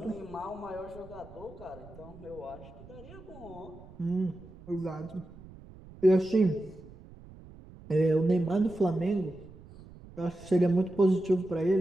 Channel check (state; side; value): noise; right; rumble, 19 dB below the sound